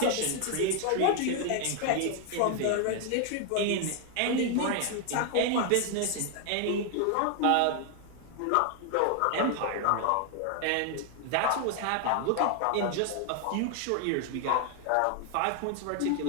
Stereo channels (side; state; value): both; different; correlation 0.00